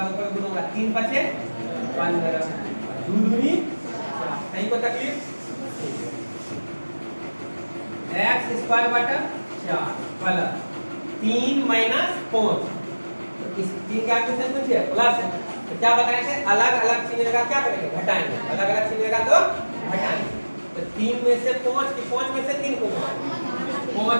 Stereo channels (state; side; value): inverted; both; correlation -1.00